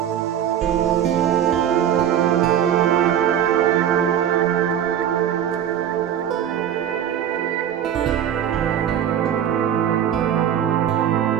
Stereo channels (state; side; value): quieter; left; 9.9 dB